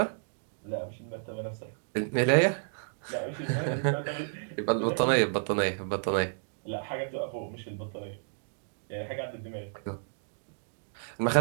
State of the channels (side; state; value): left; silent; digital silence